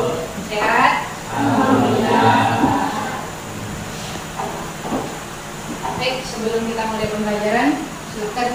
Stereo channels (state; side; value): identical; both; correlation 1.00